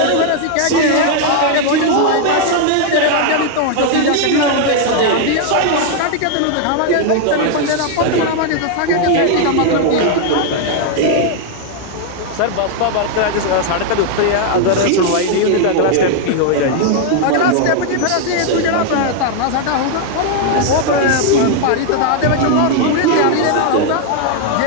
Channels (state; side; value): different; both; correlation 0.00